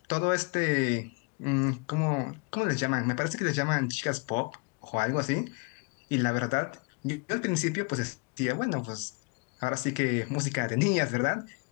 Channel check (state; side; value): quieter; right; 32.7 dB